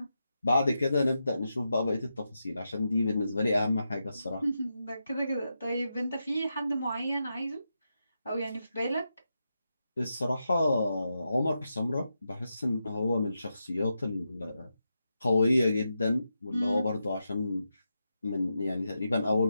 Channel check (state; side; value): inverted; both; correlation -0.87